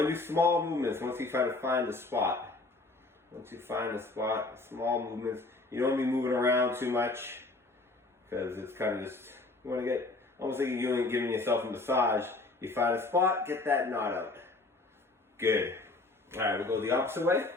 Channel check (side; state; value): right; quieter; 3.3 dB